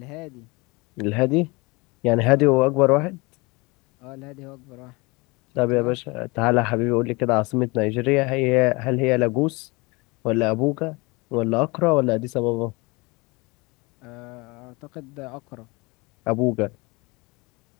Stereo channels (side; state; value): right; quieter; 26.0 dB